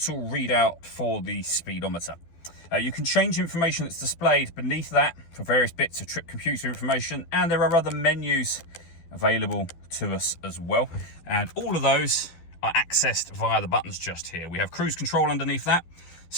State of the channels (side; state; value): right; late; 12 ms